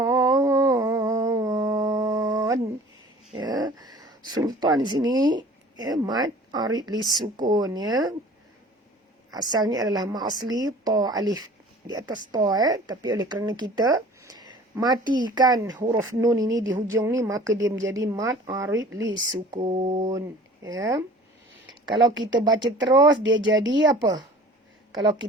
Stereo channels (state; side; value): normal; both; correlation 0.46